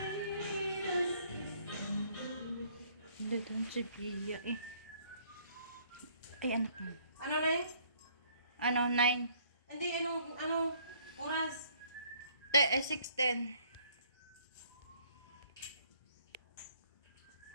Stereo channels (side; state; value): both; inverted; correlation -0.62